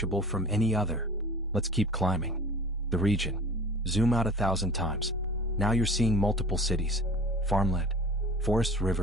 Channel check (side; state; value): both; normal; correlation 0.42